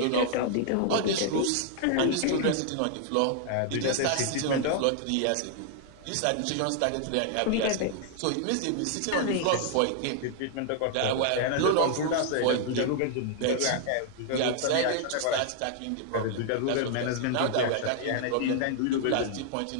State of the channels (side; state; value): both; different; correlation 0.00